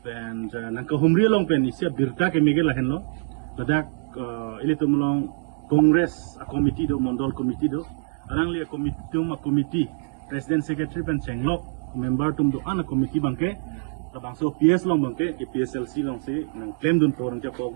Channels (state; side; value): silent; left; 60 dB below the other